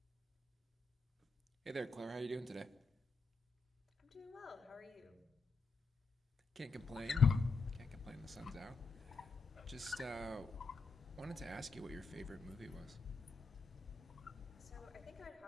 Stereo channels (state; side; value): quieter; right; 4.2 dB